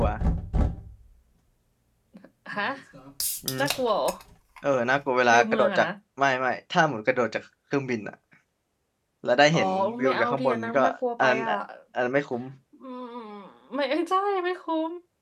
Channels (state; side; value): identical; both; correlation 1.00